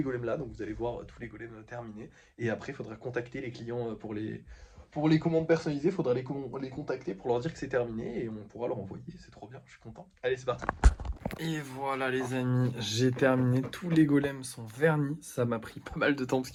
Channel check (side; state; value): both; identical; correlation 1.00